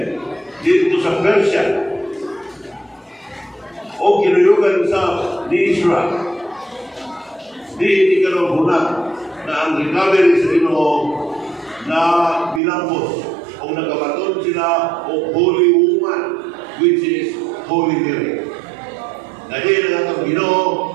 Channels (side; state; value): left; drops out; at 12.6 s